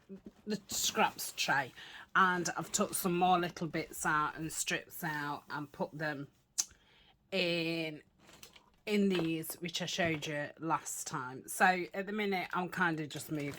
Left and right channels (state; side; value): identical; both; correlation 1.00